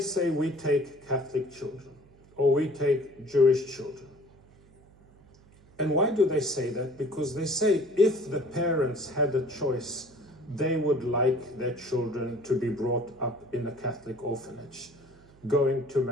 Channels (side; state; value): right; noise; hum, 27 dB below the sound